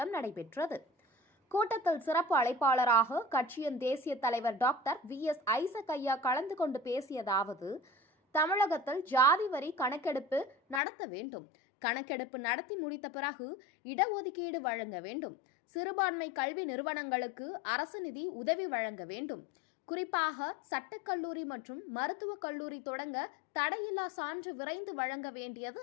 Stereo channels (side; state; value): right; drops out; at 10.8 s